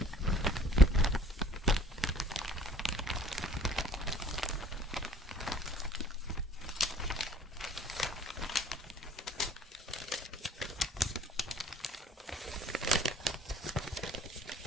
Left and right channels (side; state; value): both; normal; correlation 0.52